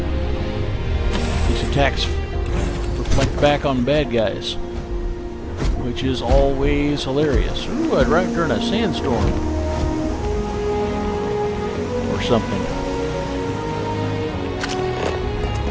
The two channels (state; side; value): identical; both; correlation 1.00